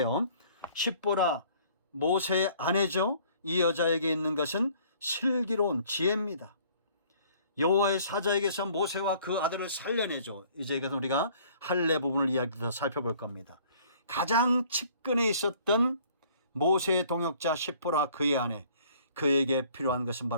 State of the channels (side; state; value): both; inverted; correlation -0.56